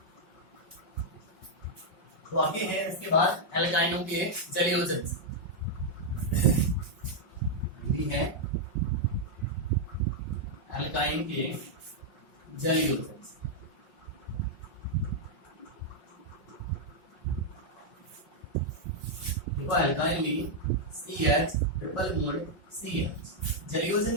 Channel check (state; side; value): late; right; 5.5 ms